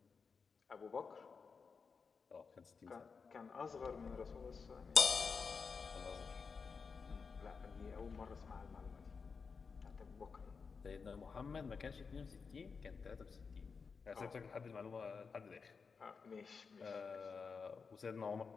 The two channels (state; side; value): quieter; right; 5.3 dB